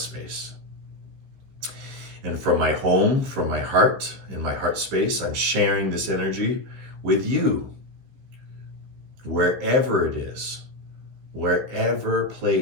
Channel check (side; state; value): left; late; 15 ms